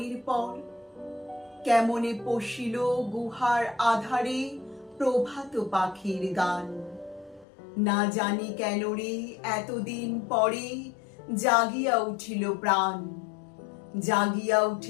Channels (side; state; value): right; drops out; at 7.5 s